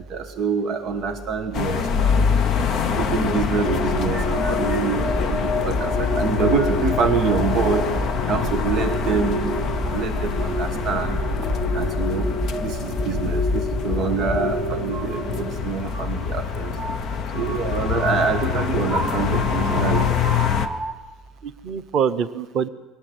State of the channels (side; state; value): both; normal; correlation 0.43